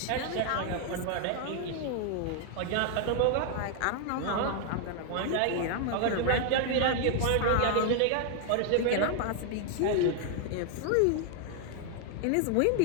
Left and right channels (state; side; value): different; both; correlation 0.00